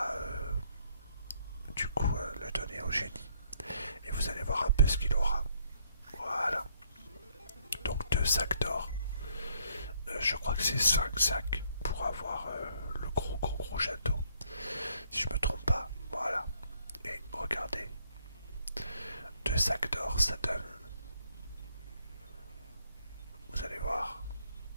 du coup le donner au génie. Et vous allez voir un peu ce qu'il aura. Voilà. Donc 2 sacs d'or. Je crois que c'est 5 sacs pour avoir le gros château. Si je me trompe pas. Voilà. Et regardez. 2 sacs d'or, ça donne. Vous allez voir.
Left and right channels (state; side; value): inverted; both; correlation -0.67